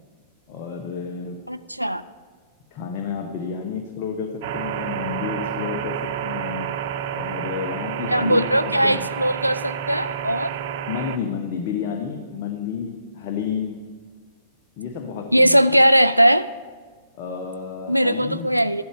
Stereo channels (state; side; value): inverted; both; correlation -0.78